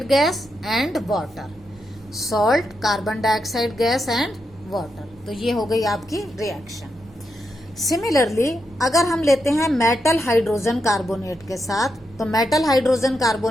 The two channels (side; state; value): right; noise; rumble, 26 dB below the sound